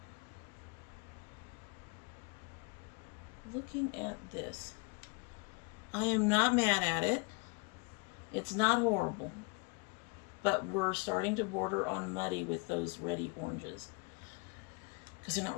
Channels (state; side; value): quieter; right; 29.1 dB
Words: I am not mad at it. It's not horrible. But we're starting to border on muddy with those reddy oranges. Because they're not